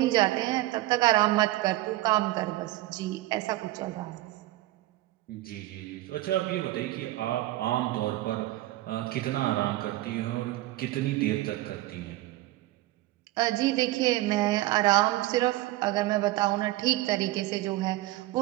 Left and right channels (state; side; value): quieter; left; 17.3 dB